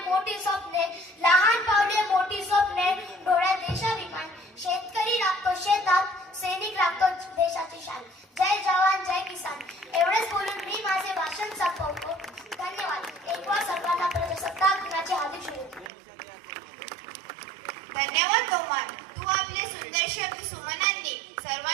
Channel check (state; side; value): drops out; left; at 15.9 s